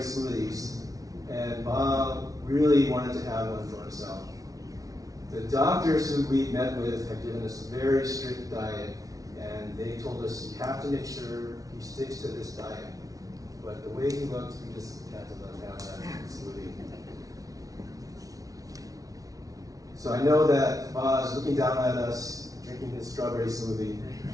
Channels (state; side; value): late; left; 0.18 ms